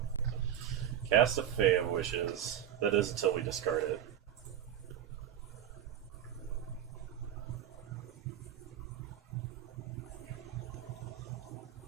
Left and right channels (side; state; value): left; quieter; 10.1 dB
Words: Cast a Fae of Wishes. That is until we discard it.